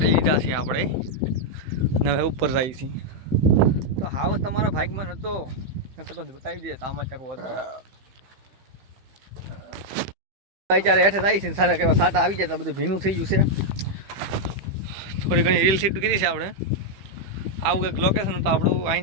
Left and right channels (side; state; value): left; late; 15 ms